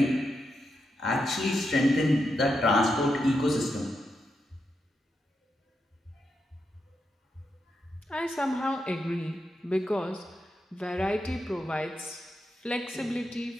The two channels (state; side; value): normal; both; correlation 0.85